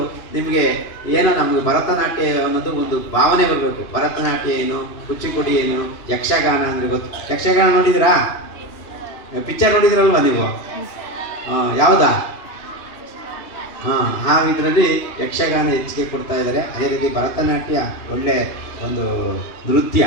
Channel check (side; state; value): right; late; 2.8 ms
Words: ನಿಮಗೆ ಏನೋ ನಮಗೆ ಭರತನಾಟ್ಯ ಅನ್ನೋದು ಒಂದು ಭಾವನೆ ಬರಬೇಕು. ಭರತನಾಟ್ಯ ಏನು, ಕುಚಿಪುಡಿ ಏನು, ಯಕ್ಷಗಾನ ಅಂದರೆ ಗೊತ್ತು. ಯಕ್ಷಗಾನ ನೋಡಿದ್ರಾ? ಪಿಕ್ಚರ್ ನೋಡಿದ್ರಲ್ವಾ ನೀವು? ಯಾವುದಾ? ಆ ಇದರಲ್ಲಿ ಯಕ್ಷಗಾನ ಹೆಚ್ಚಿಗೆ ಕೊಡ್ತಾ ಇದ್ದಾರೆ. ಅದೇ ರೀತಿ ಭರತನಾಟ್ಯ ಒಳ್ಳೆ ಒಂದು ನೃತ್ಯ,